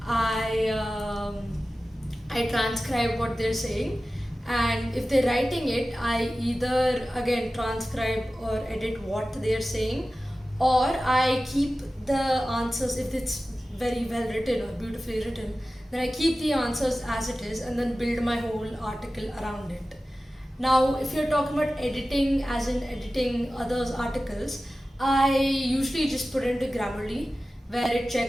I transcribe what they're saying, and if they're writing it, I either again transcribe or edit what they're saying, or I keep the answers. If it's very well written or beautifully written, then I keep the answers as it is and then build my whole article around it. Now if you're talking about editing, as in editing others' articles, I usually just put into Grammarly, where it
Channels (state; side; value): normal; both; correlation 0.95